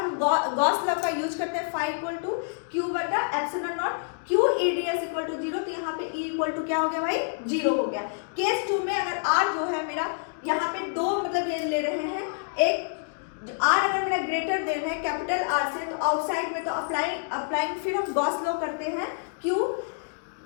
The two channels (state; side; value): silent; right; digital silence